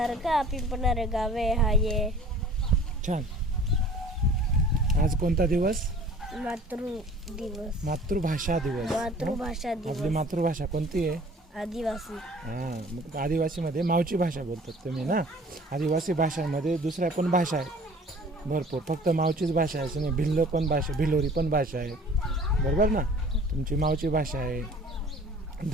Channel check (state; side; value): normal; both; correlation 0.49